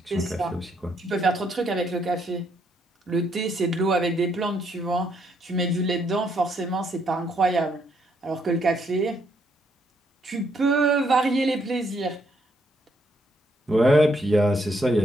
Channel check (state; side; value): normal; both; correlation 0.73